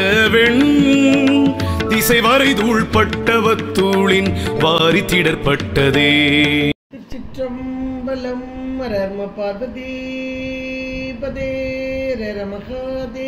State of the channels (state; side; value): identical; both; correlation 1.00